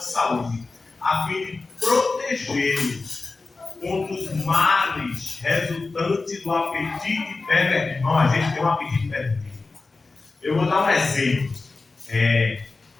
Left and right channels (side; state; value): right; quieter; 3.7 dB